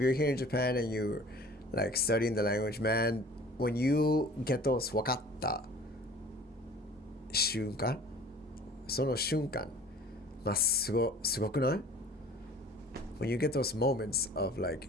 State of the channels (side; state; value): both; normal; correlation 0.46